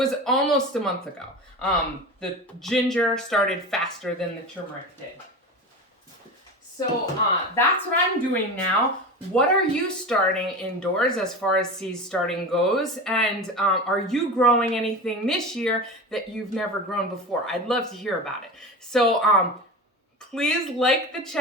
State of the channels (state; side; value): normal; both; correlation 0.28